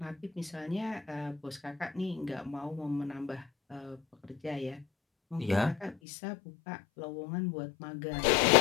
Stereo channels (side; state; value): right; drops out; at 6.0 s